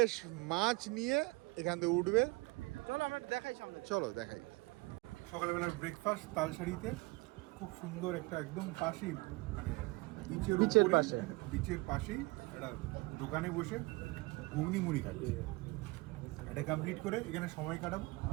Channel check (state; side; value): quieter; left; 24.3 dB